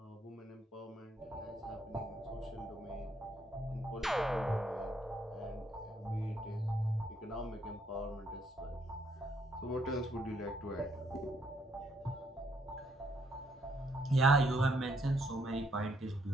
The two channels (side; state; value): both; normal; correlation 0.72